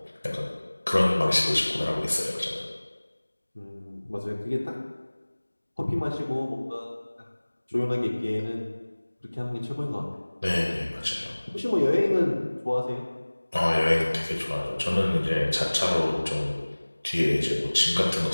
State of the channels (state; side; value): inverted; both; correlation -1.00